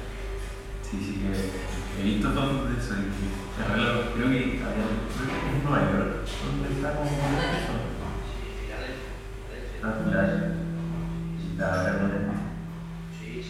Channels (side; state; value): both; identical; correlation 1.00